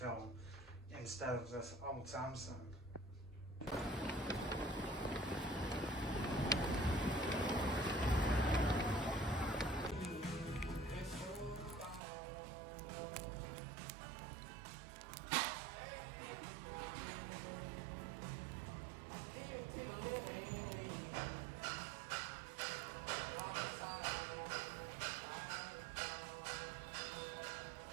instead of this old Samsung.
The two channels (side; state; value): left; drops out; at 12.0 s